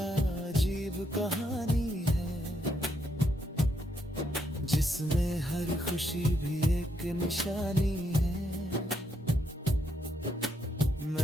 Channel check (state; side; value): normal; both; correlation 0.77